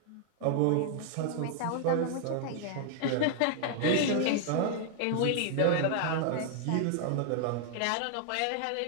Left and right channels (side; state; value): both; different; correlation 0.00